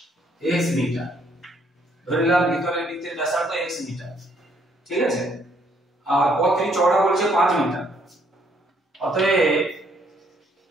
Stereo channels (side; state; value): both; normal; correlation 0.68